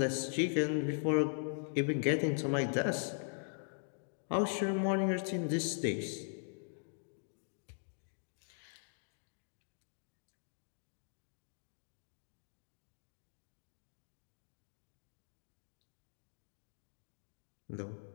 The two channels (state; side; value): silent; right; digital silence